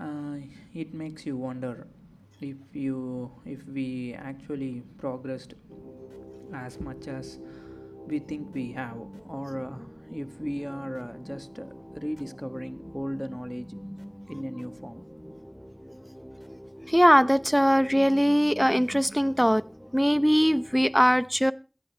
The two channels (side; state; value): both; identical; correlation 1.00